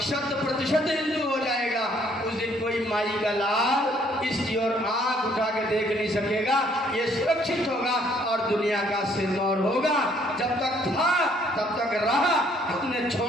हिंदू हो जाएगा, उस दिन कोई माई का लाल इसकी ओर आंख उठा के देख नहीं सकेगा। ये सुरक्षित होगा और दुनिया का सिरमौर होगा। जब तक था तब तक रहा, हमने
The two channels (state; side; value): normal; both; correlation 0.64